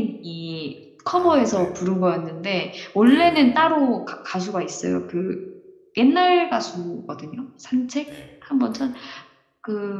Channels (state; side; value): identical; both; correlation 1.00